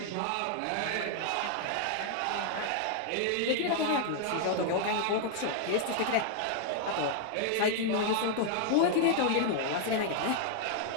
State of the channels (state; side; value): different; both; correlation 0.00